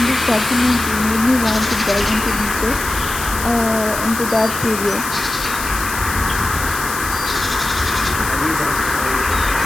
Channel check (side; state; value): left; noise; hiss, 7 dB below the sound